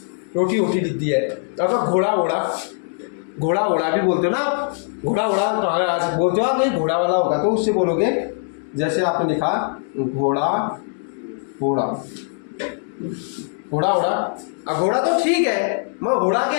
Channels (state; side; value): silent; right; 65 dB below the other